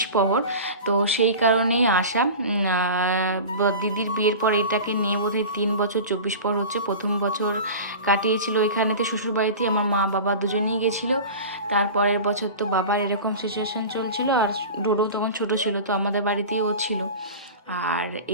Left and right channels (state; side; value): inverted; both; correlation -0.33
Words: প্রহর, তো সেই কারণেই আসা। দিদির বিয়ের পর এটাকে নিয়ে বোধহয় 3 বছর 24 প্রহর হচ্ছে। প্রথম বছর কাটিয়েছিল এখানেতে শ্বশুরবাড়িতেই, আমার মা বাবা দুজনেই গেছিলো। তারপরের বছর তো বাবার এরকম সিচুয়েশান চলছিল, আর ডোডো তখন ছোটো ছিল, তো আমাদের বাড়িতেই ও ছিল। আর